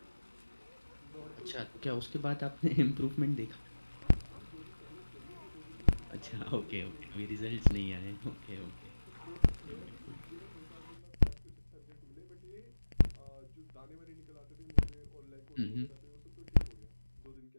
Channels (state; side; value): inverted; both; correlation -1.00